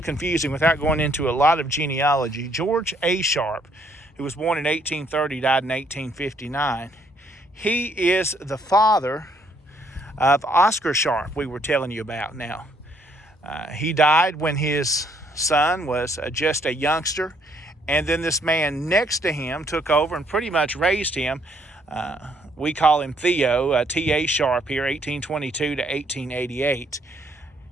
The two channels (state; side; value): normal; both; correlation 0.68